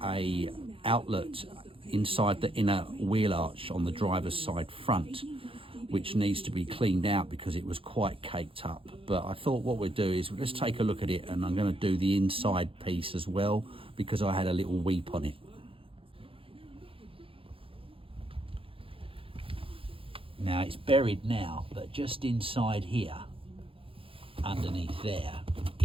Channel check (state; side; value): late; left; 0.26 ms